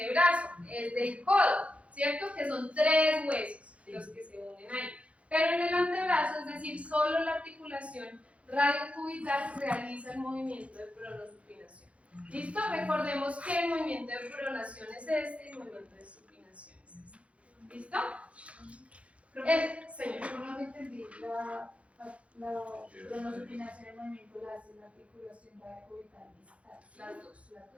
es del codo, ¿cierto? Que son 3 huesos los que se unen ahí. Pero en el antebrazo, es decir, solo la articulación radiocubital realiza el movimiento de pronosupinación. ¿Listo? Recordemos que el movimiento de pronación es este y el movimiento de supinación es este. ¿Listo? Señor. Yo no entendí la pronosupinación y movimiento la hace la articulación radiocubital distal.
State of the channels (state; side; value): late; left; 0.063 ms